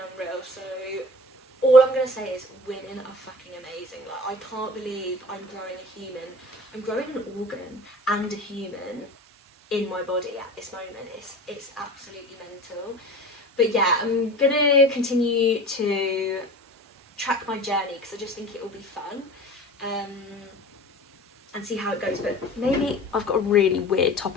unreal. So all I'm gonna say is women are fucking amazing. Like I can't believe I'm growing a human. I'm growing an organ and a human in my body at this moment. It's absolutely mental. But yeah, I'm gonna continue to track my journey because I just think it will be fun. And see how it goes. But maybe I've got a really weird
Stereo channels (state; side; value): normal; both; correlation 0.38